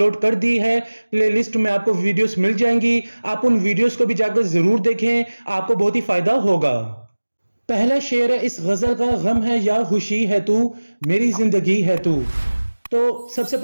کر دی ہے۔ پلے لسٹ میں آپ کو ویڈیوز مل جائیں گی، آپ ان ویڈیوز کو بھی جا کر ضرور دیکھیں، آپ کو بہت ہی فائدہ ہوگا۔ پہلا شعر ہے اس غزل کا، غم ہے یا خوشی ہے تو، میری زندگی ہے تو۔ تو سب سے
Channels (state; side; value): inverted; both; correlation -1.00